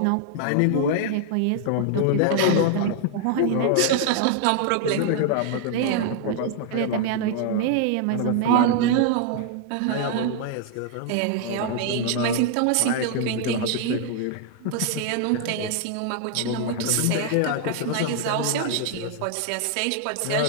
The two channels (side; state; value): both; different; correlation 0.00